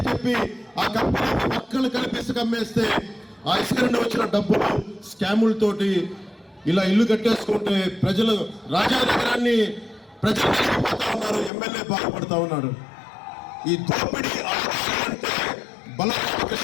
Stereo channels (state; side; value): drops out; right; at 11.5 s